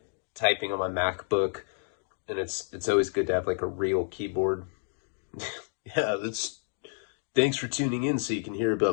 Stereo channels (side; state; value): right; silent; digital silence